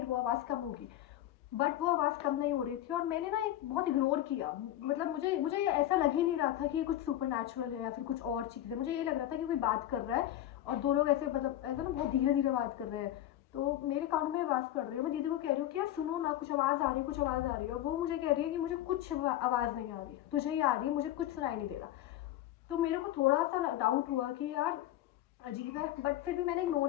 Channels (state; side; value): quieter; right; 13.1 dB